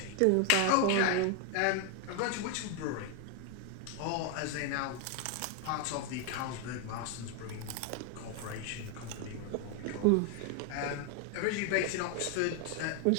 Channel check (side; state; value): both; different; correlation 0.01